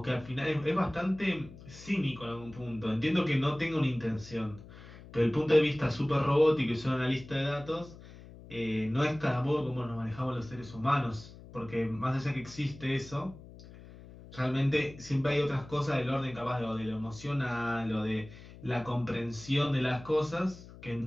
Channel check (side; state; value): left; noise; hum, 18 dB below the sound